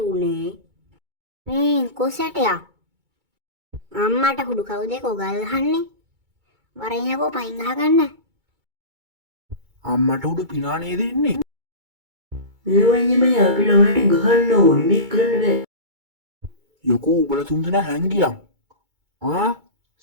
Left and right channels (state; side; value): late; left; 2.3 ms